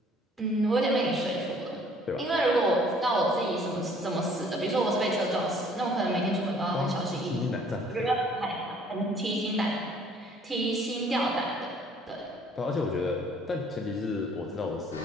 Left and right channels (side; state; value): both; normal; correlation 0.58